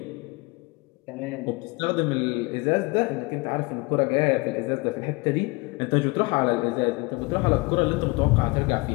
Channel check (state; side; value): quieter; right; 26.0 dB